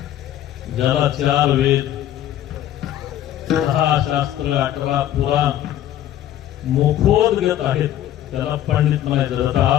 ज्याला 4 वेद, 6 शास्त्र, 18 पुराण मुखोद्गत आहेत त्याला पंडित म्हणायचं.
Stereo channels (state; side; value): quieter; right; 12.1 dB